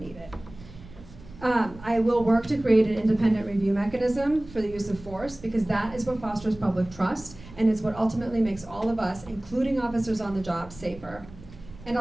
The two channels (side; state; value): right; noise; rumble, 18 dB below the sound